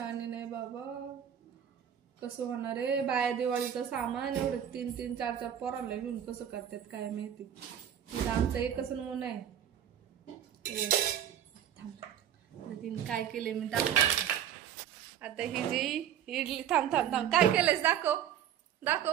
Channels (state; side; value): quieter; left; 9.7 dB